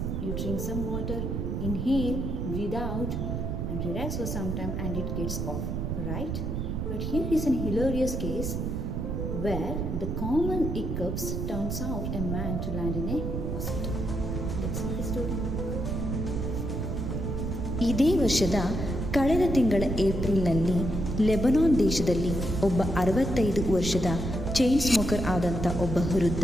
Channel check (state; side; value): noise; right; rumble, 2 dB below the sound